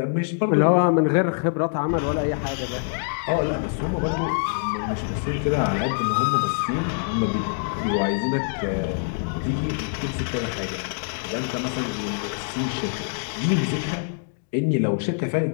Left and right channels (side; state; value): right; silent; digital silence